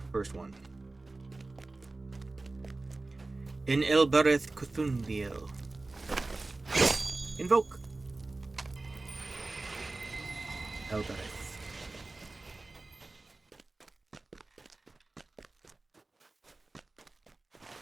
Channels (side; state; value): left; quieter; 3.2 dB